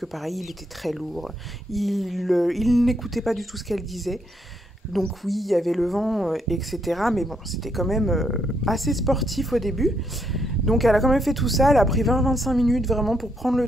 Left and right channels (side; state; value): both; normal; correlation 0.76